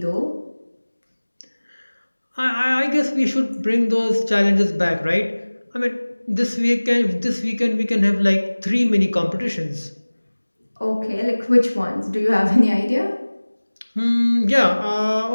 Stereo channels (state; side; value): inverted; both; correlation -1.00